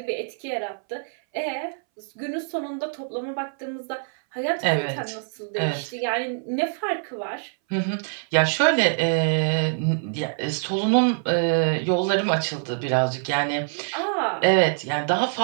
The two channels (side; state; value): left; silent; 62 dB below the other